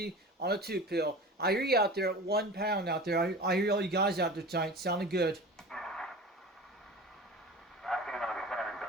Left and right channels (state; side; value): normal; both; correlation 0.36